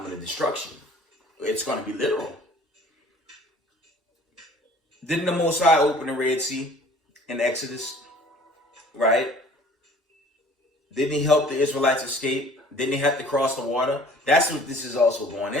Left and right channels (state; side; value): normal; both; correlation 0.51